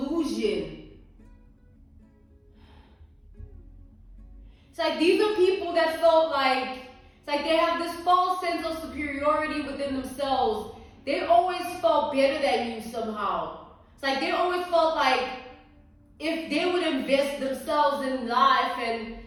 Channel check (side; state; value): both; identical; correlation 1.00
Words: It's like these are people that felt like, it's like they have this false sense of superiority within themselves. They always felt better than you somehow. It's like they always felt like if they would invest themselves in life and